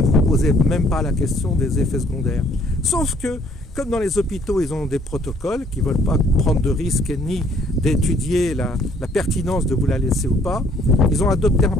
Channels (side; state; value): both; normal; correlation 0.62